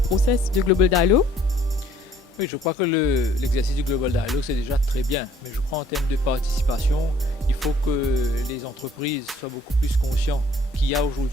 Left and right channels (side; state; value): both; normal; correlation 0.59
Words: de Global Dialogue? Oui, je crois que l'exercice du Global Dialogue, c'est déjà très bien. Mais je crois en termes de participation, il faut que les entreprises soient beaucoup plus conscientes qu'il y a